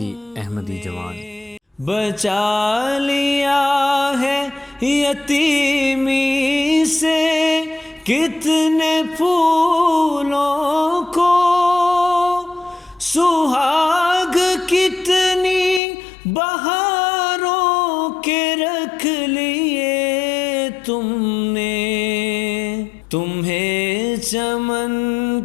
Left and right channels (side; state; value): right; drops out; at 15.8 s